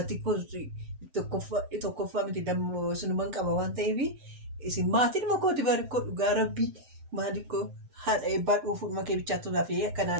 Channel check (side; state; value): left; late; 7.8 ms